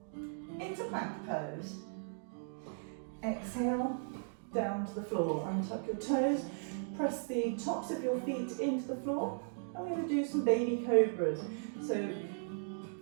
into plank pose. Exhale, down to the floor. Untuck your toes, press the tops of your feet into the floor. I'm going to do some baby cobras. So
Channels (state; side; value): silent; left; digital silence